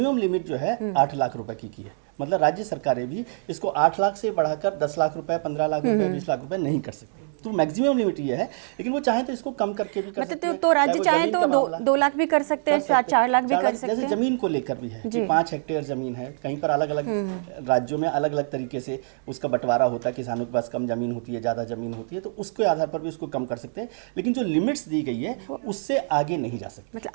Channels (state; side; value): silent; left; digital silence